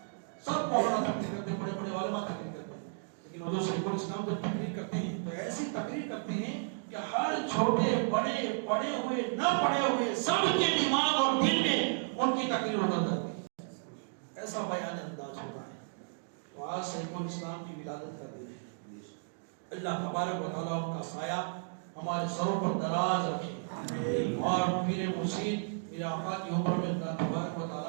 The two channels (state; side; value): silent; left; digital silence